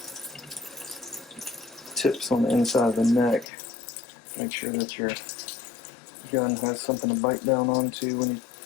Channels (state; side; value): drops out; right; at 3.5 s